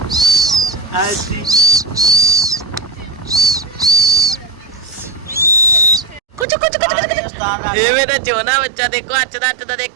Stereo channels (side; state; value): left; drops out; at 6.5 s